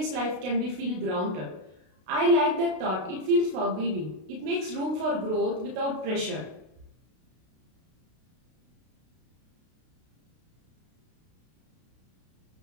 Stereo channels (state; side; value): late; left; 32 ms